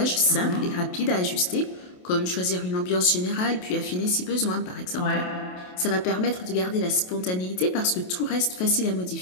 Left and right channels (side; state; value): right; late; 28 ms